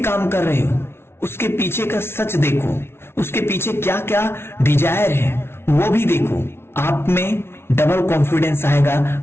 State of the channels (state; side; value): late; right; 0.12 ms